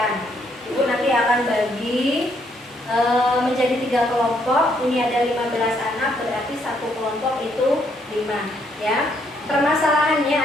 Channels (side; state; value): both; normal; correlation 0.72